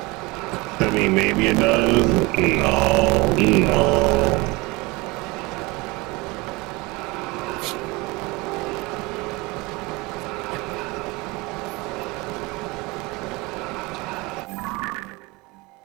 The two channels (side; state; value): left; quieter; 22.7 dB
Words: I mean, maybe it does. No.